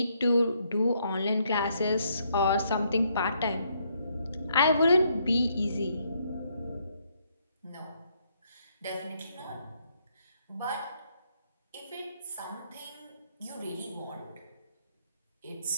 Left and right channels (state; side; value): inverted; both; correlation -0.72